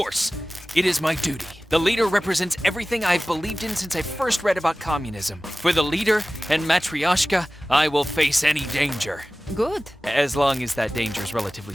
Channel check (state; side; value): normal; both; correlation 0.97